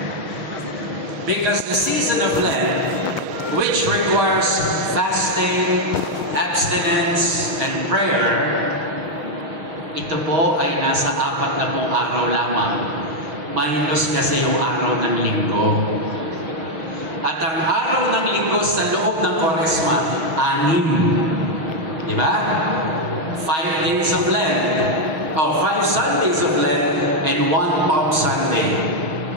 Because the season of Lent, which requires fasting, abstinence, and prayer, ito po ay nasa 40 araw lamang. Minus kasi yung araw ng linggo. At ang araw ng linggo sa loob ng Kwaresma, 6. Diba? 5 days of Lent. O 5 Sundays of Lent and 1 Palm Sunday.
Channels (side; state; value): left; late; 6.1 ms